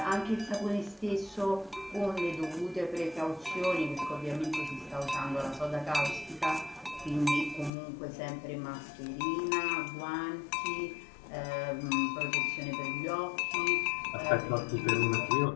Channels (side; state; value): right; drops out; at 7.7 s